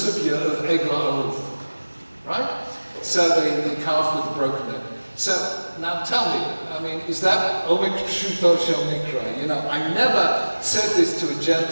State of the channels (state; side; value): inverted; both; correlation -1.00